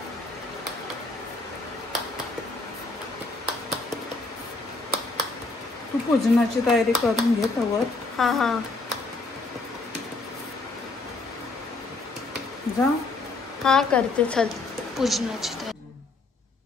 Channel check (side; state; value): right; quieter; 3.3 dB